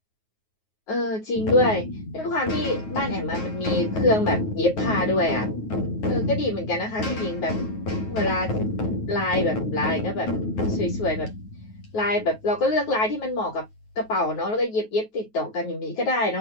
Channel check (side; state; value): right; late; 9.3 ms